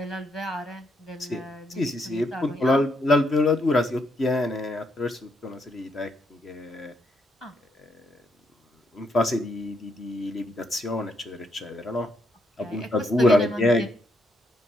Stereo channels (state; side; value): normal; both; correlation 0.76